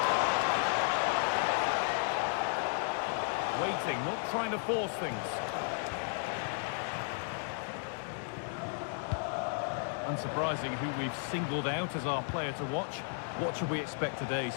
Waiting, not trying to force things. Unsurprising who we've singled out as our player to watch. What should we expect today,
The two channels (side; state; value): right; silent; 55 dB below the other